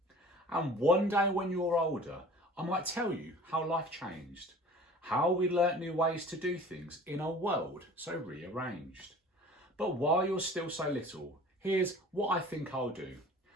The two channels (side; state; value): both; normal; correlation 0.44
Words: And one day when you're older, I might tell you how life changed, how we learnt new ways to do things in a world so rearranged. But while you're still so little, here's what I think I'll do.